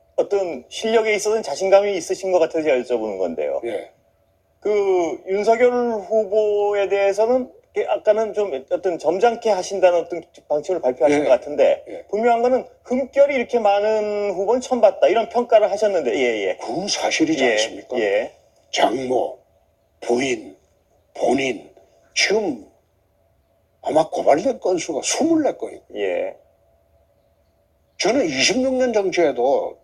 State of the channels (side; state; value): both; identical; correlation 1.00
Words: 있어서는 자신감이 있으신 것 같아서 제가 여쭤보는 건데요. 예. 그 윤석열 후보에 대해서는 아까는 좀 어떤 점잖게 하신다는 어떤 방침을 발표하신 예. 것 같은데 예. 분명한 거는 흠결이 이렇게 많은 후보는 처음 봤다 이런 평가를 하셨는데 예예. 그건 사실이지 예. 않습니까? 예. 장모, 부인, 본인 지금 아마 고발된 건수가 24건이고 예. 저는 26년 정치에도